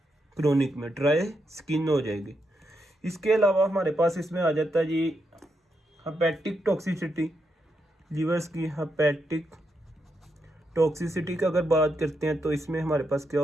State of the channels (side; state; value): both; normal; correlation 0.82